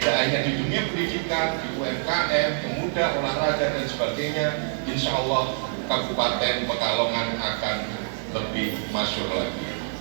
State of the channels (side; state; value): left; silent; 59 dB below the other